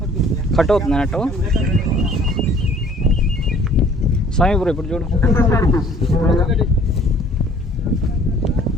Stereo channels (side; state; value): both; normal; correlation 0.55